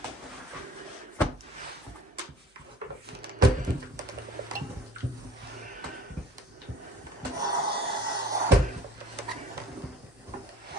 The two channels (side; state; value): both; normal; correlation 0.48